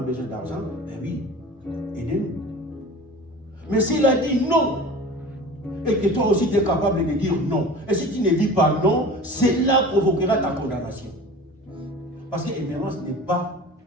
besoin d'argent, ben oui, aidez-nous. Mais s'il a dit non, et que toi aussi tu es capable de dire non, et si tu ne dis pas non, cela provoquera ta condamnation. Parce que Émérance n'est pas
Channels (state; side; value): normal; both; correlation 0.38